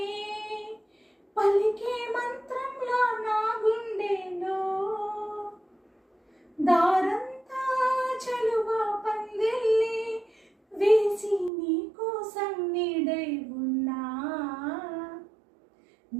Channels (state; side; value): drops out; left; at 11.5 s